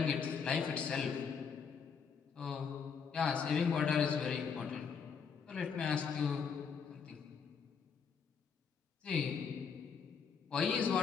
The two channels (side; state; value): right; quieter; 6.3 dB